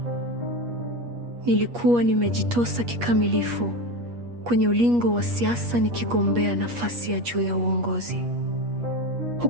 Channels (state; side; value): late; left; 8.4 ms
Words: Nilikuwa nimejitosa kikamilifu kwenye ulingo wa siasa, nikigombea nafasi ya juu ya uongozi,